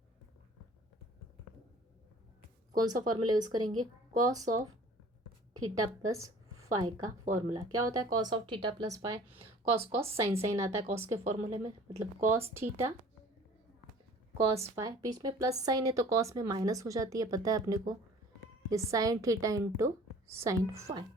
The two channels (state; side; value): normal; both; correlation 0.48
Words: कौन सा फॉर्मूला यूज़ करेंगे, cos of theta plus phi का फॉर्मूला। क्या होता है cos of theta plus phi, cos cos sine sine आता है कॉस के फॉर्मूले में, मतलब कॉस थीटा कॉस फाई, बीच में प्लस साइन है तो कॉस में माइनस हो जाती है पता है अपने को, ये sine theta into sine phi.